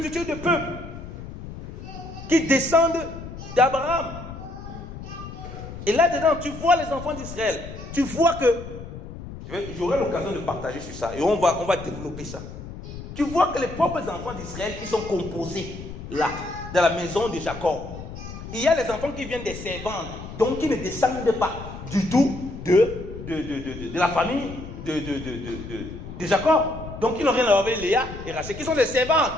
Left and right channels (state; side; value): noise; left; rumble, 11 dB below the sound